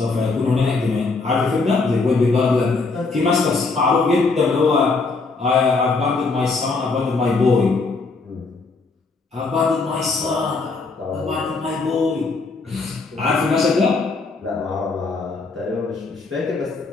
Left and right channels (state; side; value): quieter; right; 4.0 dB